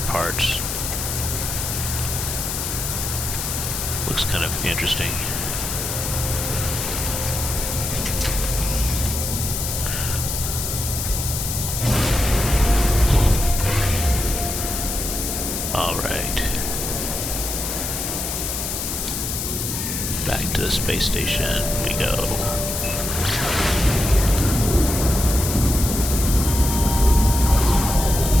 parts. Looks kind of interesting. Alright. Back to the space station we go.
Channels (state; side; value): noise; left; hiss, 3 dB below the sound